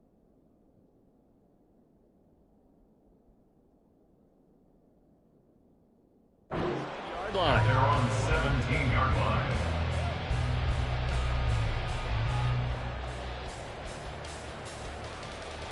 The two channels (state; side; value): identical; both; correlation 1.00